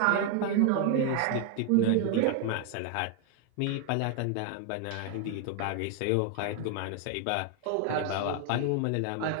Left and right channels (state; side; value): different; both; correlation 0.00